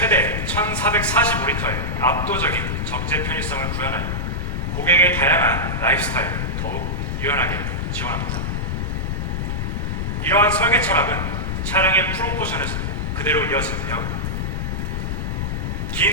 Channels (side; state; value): left; noise; rumble, 1 dB below the sound